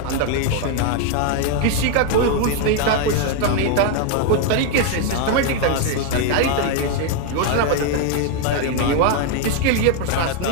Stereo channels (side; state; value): both; different; correlation 0.01